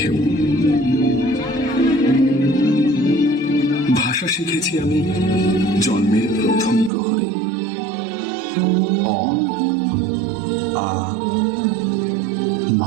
ভাষা শিখেছি আমি জন্মের প্রথম প্রহরে, অ আ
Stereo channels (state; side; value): drops out; left; at 6.9 s